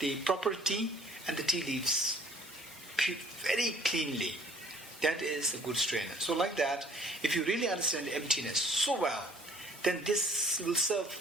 proper tea and the tea leaves very cleanly. That is a good strainer. So like that, if you really understand emptiness so well, then this will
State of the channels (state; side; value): normal; both; correlation 0.55